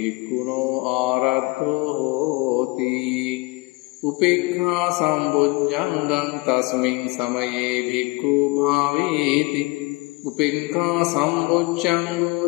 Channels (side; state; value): right; quieter; 24.9 dB